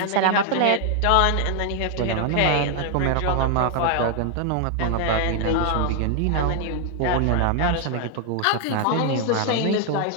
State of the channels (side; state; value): both; different; correlation 0.00